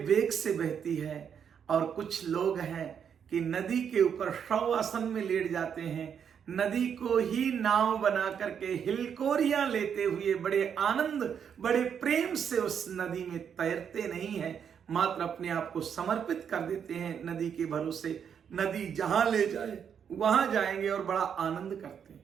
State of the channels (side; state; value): left; quieter; 7.7 dB